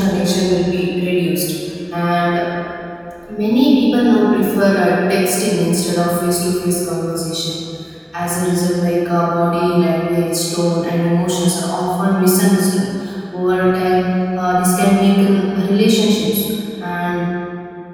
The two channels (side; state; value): both; identical; correlation 1.00